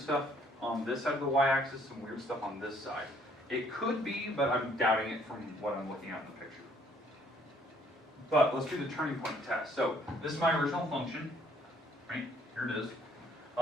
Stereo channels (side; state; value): both; normal; correlation 0.63